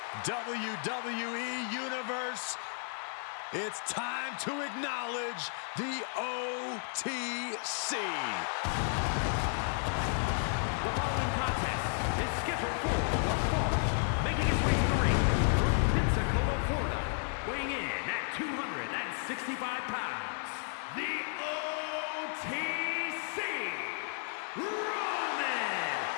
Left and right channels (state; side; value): silent; right; 56 dB below the other